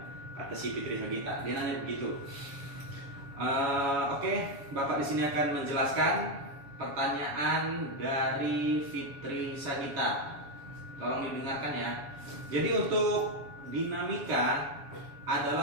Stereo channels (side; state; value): left; late; 7.2 ms